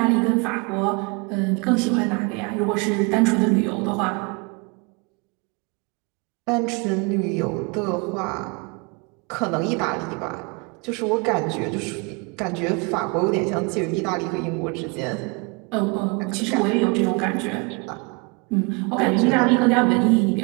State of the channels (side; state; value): left; quieter; 30.1 dB